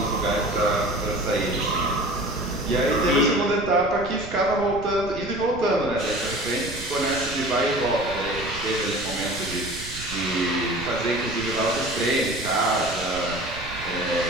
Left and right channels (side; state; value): right; noise; rumble, 13 dB below the sound